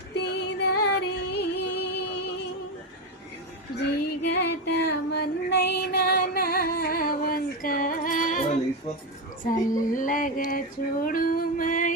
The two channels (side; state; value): both; normal; correlation 0.12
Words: జిగట మన్నైనా నా వంక చల్లగా